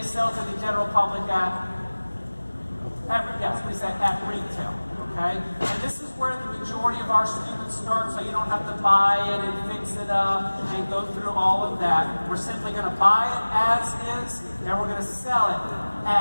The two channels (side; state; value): both; inverted; correlation -1.00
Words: sell to the general public at retail. Okay? And this is where the majority of our students start, so you don't have to buy it and fix it up and go through all of that. We're simply going to buy it as is, and we're going to sell it